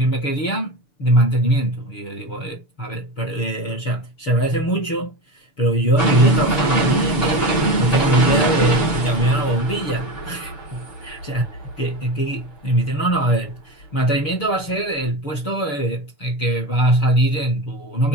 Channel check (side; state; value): right; late; 6.8 ms